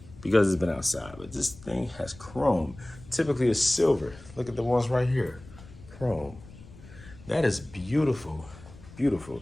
because it's been outside, but this thing has chrome. Typically it's silver. Look at the ones right here. Chrome. That is beautiful.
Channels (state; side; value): noise; left; rumble, 19 dB below the sound